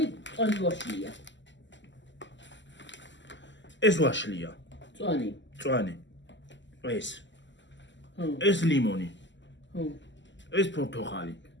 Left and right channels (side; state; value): right; late; 0.53 ms